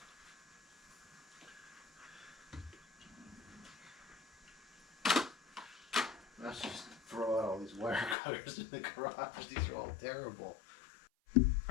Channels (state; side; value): drops out; right; at 8.2 s